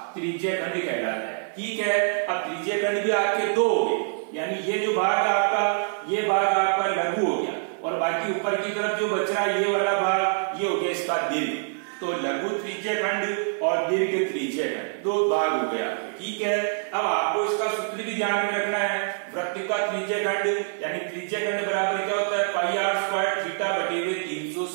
त्रिज्या खंड कहलाता है। ठीक है, अब त्रिज्या खंड भी आपके दो हो गए, यानी ये जो भाग है आपका, ये भाग आपका लघु हो गया और बाकी ऊपर की तरफ जो बच रहा है ये वाला भाग, ये हो गया इसका दीर्घ। तो लघु त्रिज्या खंड और दीर्घ त्रिज्या खंड दो भाग हो गए आपके। ठीक है, अब आपको इसका सूत्र भी ध्यान में रखना है। वृत्त का त्रिज्या खंड यानी त्रिज्या खंड बराबर क्या होता है? पाई आर स्क्वायर थीटा बटे हुए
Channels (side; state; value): left; silent; 55 dB below the other